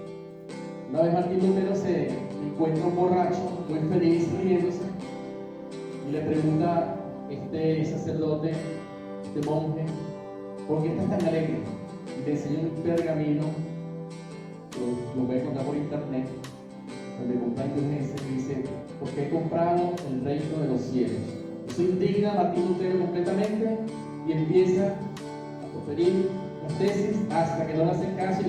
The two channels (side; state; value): both; identical; correlation 1.00